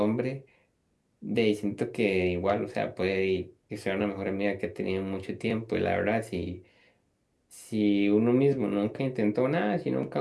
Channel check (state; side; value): identical; both; correlation 1.00